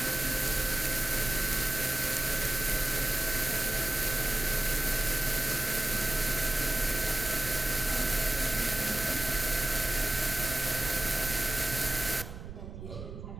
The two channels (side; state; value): right; noise; rumble, 11 dB below the sound